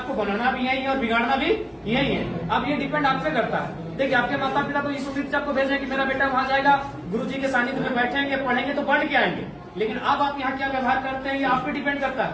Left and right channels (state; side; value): identical; both; correlation 1.00